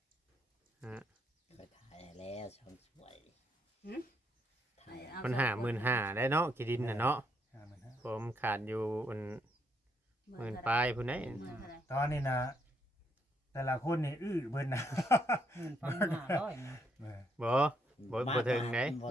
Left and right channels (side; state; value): both; normal; correlation 0.74